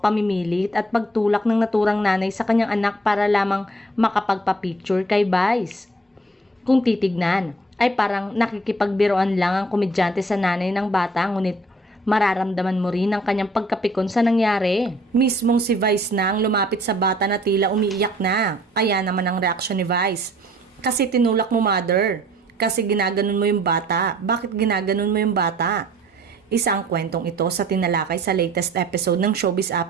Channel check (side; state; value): both; normal; correlation 0.57